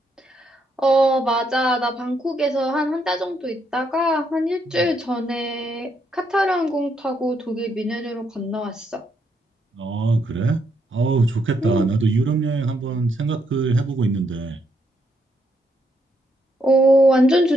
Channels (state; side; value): normal; both; correlation 0.76